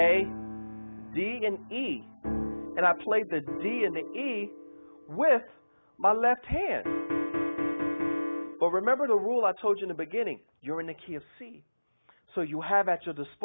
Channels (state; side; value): inverted; both; correlation -1.00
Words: D, and E, and I played the D and the E with my left hand. But remember the rule I told you in the beginning, you're in the key of C. So you have at your